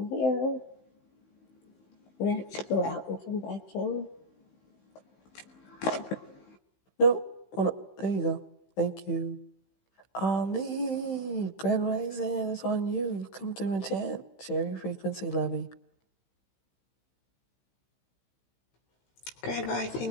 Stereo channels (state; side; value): late; right; 15 ms